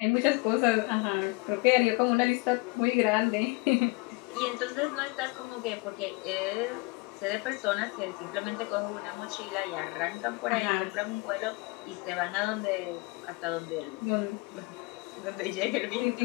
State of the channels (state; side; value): quieter; right; 26.0 dB